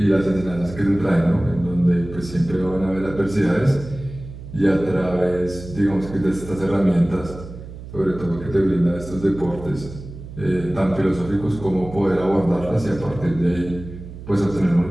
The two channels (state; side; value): noise; right; hum, 13 dB below the sound